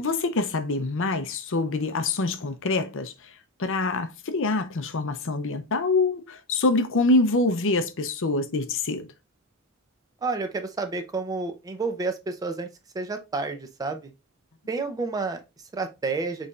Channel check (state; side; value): normal; both; correlation 0.17